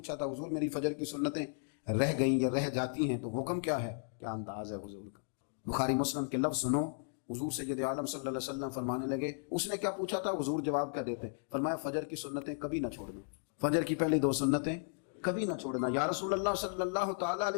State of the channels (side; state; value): right; silent; digital silence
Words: تھا, حضور میری فجر کی سنتیں رہ گئیں یا رہ جاتی ہیں تو حکم کیا ہے, کیا انداز ہے حضور کا. بخاری مسلم کے لفظ سنو. حضور سید عالم صلی اللہ علیہ وسلم فرمانے لگے, اس نے کیا پوچھا تھا, حضور جواب کیا دیتے, فرمایا فجر کی سنتیں کبھی نہ چھوڑنا, فجر کی پہلی 2 سنتیں کبھی نہ چھوڑنا. یا رسول اللہ صلی اللہ تعالیٰ